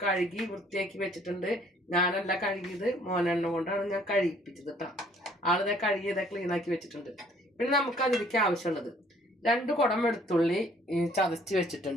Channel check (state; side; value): normal; both; correlation 0.60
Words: കഴുകി വൃത്തിയാക്കി വെച്ചിട്ടുണ്ട്. ഞാനല്ല കഴുകിയത്, മോനെണ്ണ കൊണ്ടാണ് ഞാൻ കഴിപ്പിച്ചത് കേട്ടോ. ആളിതെ കഴുകിയത് ക്ലീനാക്കി വെച്ചിട്ടുണ്ട്. പിന്നെ നമുക്ക് അതിലേക്ക് ആവശ്യമുള്ളത് 2 കുടം വെളുത്തുള്ളി ചതച്ച്